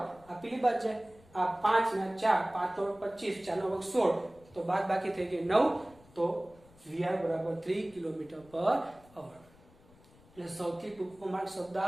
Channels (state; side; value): noise; left; rumble, 26 dB below the sound